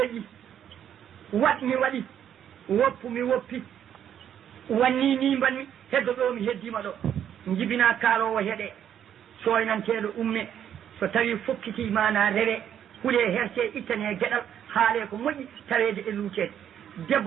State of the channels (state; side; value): quieter; left; 9.6 dB